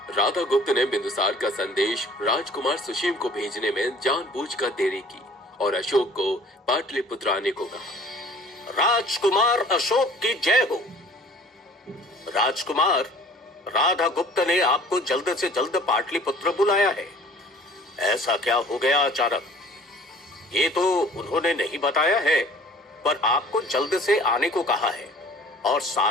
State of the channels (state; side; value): normal; both; correlation 0.50